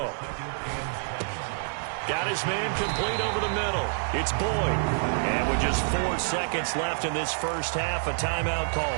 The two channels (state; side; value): silent; left; digital silence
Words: Got his man complete over the middle. It's Boyd. And with just 4 seconds left in this first half, a timeout call.